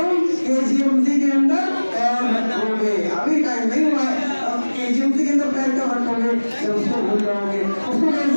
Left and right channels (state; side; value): inverted; both; correlation -1.00